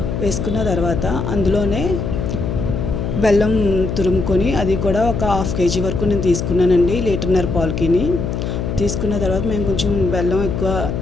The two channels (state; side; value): noise; left; hum, 3 dB below the sound